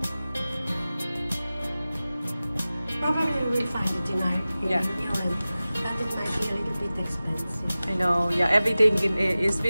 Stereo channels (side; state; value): both; inverted; correlation -0.97